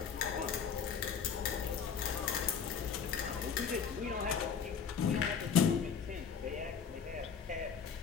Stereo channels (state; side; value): quieter; right; 6.8 dB